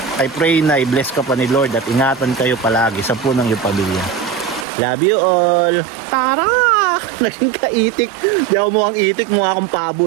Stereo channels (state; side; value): drops out; left; at 4.7 s